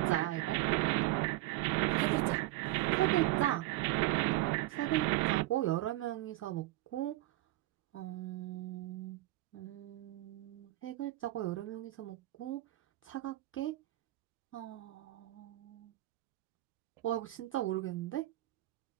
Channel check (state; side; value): quieter; left; 17.6 dB